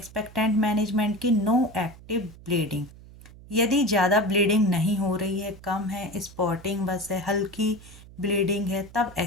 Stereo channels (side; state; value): right; noise; hum, 20 dB below the sound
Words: मैनेजमेंट की, नो एक्टिव ब्लीडिंग, यदि ज़्यादा ब्लीडिंग नहीं हो रही है, कम है, स्पॉटिंग बस है, हल्की ब्लीडिंग है, तब